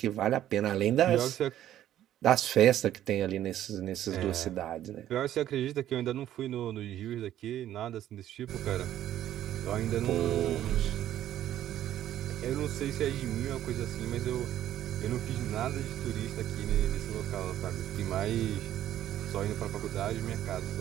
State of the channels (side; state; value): left; quieter; 12.1 dB